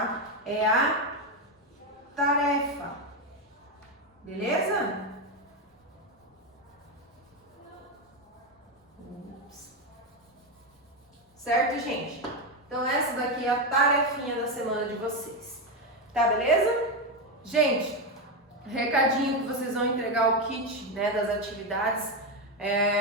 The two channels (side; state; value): both; normal; correlation 0.10